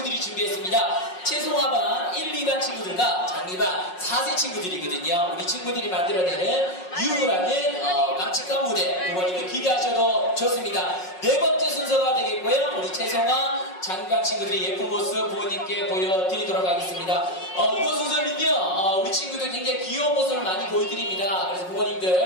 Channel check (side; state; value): right; late; 5.5 ms